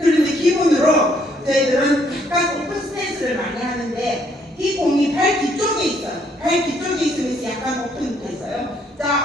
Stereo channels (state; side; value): normal; both; correlation 0.68